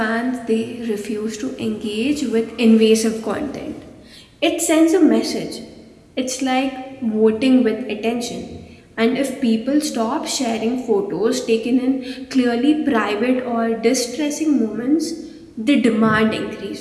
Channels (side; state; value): both; identical; correlation 1.00